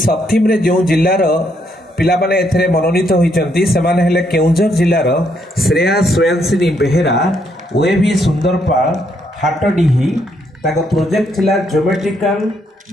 थीम रे जो जिल्ला रो पिला माने एथरे मनोनीत होइचंती से माने हेले केउंझर जिल्ला रो श्रेया स्वयंसिनी बेहेरा ओएवी सुंदरपाल हाटडीही। ताको प्रोजेक्ट थिला geometrical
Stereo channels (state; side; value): normal; both; correlation 0.74